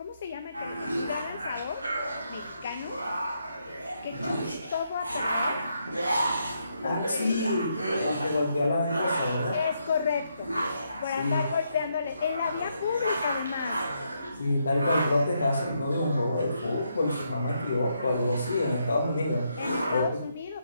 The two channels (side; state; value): both; inverted; correlation -0.78